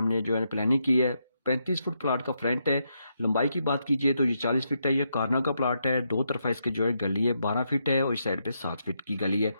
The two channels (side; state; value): both; inverted; correlation -0.81